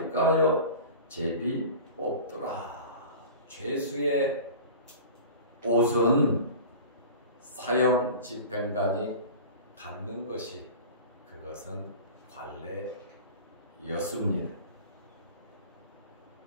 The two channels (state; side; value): inverted; both; correlation -0.37